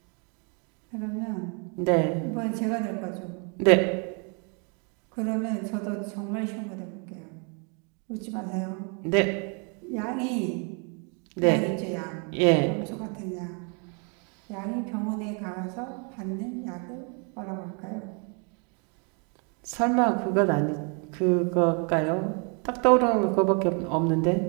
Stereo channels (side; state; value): left; quieter; 36.8 dB